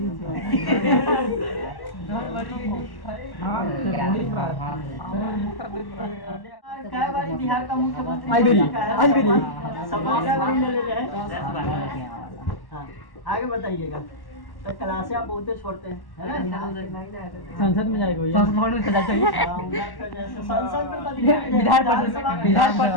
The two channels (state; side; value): late; right; 1.1 ms